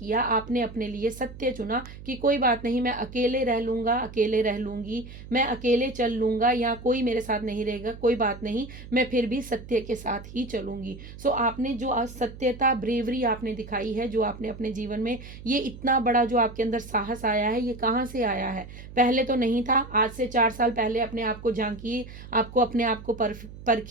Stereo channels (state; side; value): noise; right; hum, 15 dB below the sound